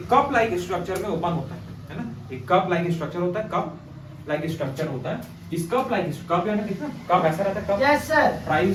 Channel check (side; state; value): both; identical; correlation 1.00